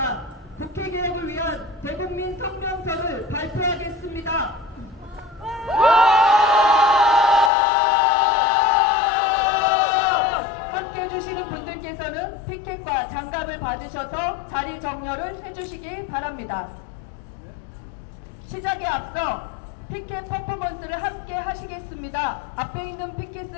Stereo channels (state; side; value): drops out; right; at 7.5 s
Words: 국회개혁을 위한 대국민 성명서를 발표하겠습니다. 함께해 주시는 분들께서는 피켓과 장갑을 받으셔서 자리 정렬을 해주시기 바랍니다. 시작에 앞서 피켓 퍼포먼스를 함께 하시겠습니다. 앞에 있는